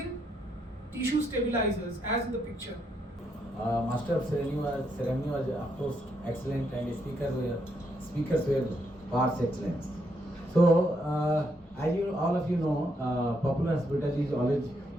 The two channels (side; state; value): both; normal; correlation 0.77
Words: tissue stabilizers, as in the picture. Master of ceremony was of course excellent, and speakers were par excellence. So as you all of you know, Popular Hospital is always